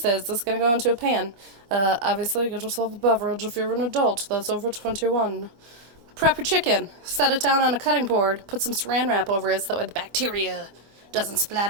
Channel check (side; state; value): left; late; 25 ms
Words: It's going to go into a pan. Obviously, get yourself a beverage if you're an adult that's over 21. Prep your chicken, set it down on a cutting board, put some saran wrap over it so that way the bacteria doesn't